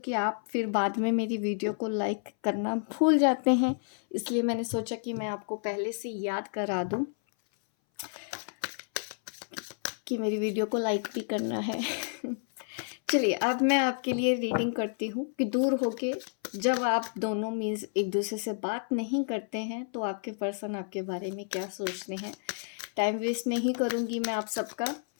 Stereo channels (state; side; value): silent; right; 58 dB below the other